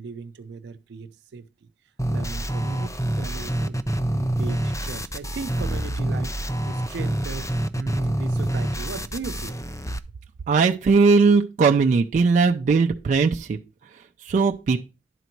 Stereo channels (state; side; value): quieter; left; 3.3 dB